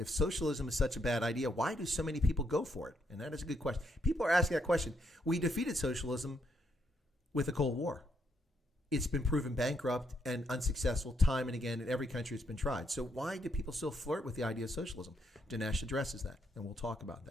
socialism is such a bad idea, why do so many people go for it? And that is a good question. People are asking that question. We defeated socialism with the Cold War. It's been proven bankrupt and unsuccessful time and again in every country it's been tried. So why do people still flirt with the idea of socialism? Dinesh addresses that, and we'll talk about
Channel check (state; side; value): normal; both; correlation 0.76